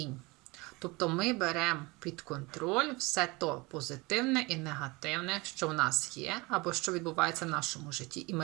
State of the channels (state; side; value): quieter; left; 24.6 dB